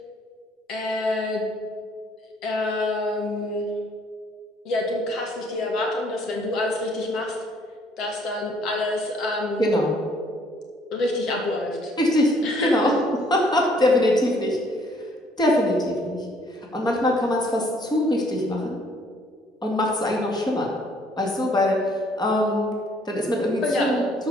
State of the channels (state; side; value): normal; both; correlation 0.63